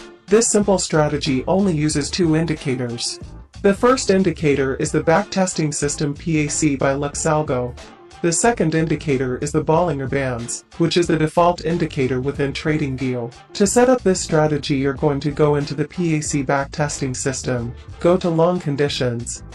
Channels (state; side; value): identical; both; correlation 1.00